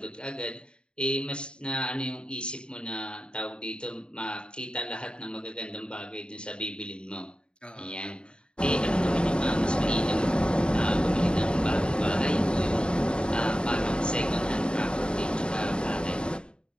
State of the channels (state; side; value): late; right; 0.051 ms